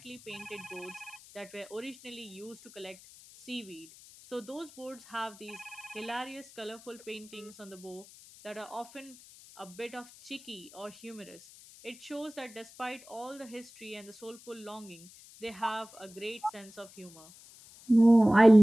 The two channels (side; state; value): left; noise; hiss, 20 dB below the sound